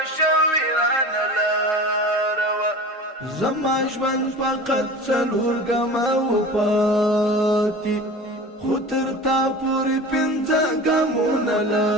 لاروا زما ژوند فقط څلور ګامه وپاتې خو تر تا پورې پنځه ګامونه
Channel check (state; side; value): normal; both; correlation 0.36